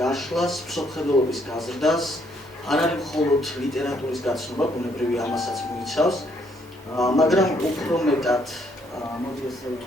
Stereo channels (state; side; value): normal; both; correlation 0.69